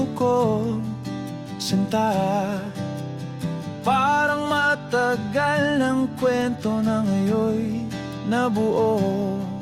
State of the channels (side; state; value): both; identical; correlation 1.00